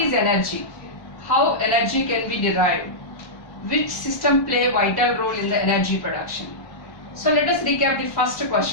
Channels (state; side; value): late; right; 1.2 ms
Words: energy? How energy can be derived? Which system play a vital role in the energy production? So let us recap the first